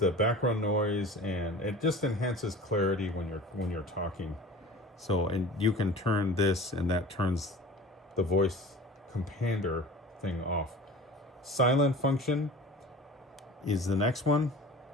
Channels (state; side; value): normal; both; correlation 0.39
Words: background noise, and it just enhances clarity when you're talking. So, and you can turn this, and that turns the voice compander thing off. Silent function is the next one.